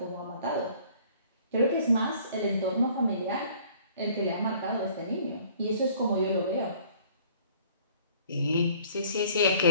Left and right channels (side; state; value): both; inverted; correlation -0.55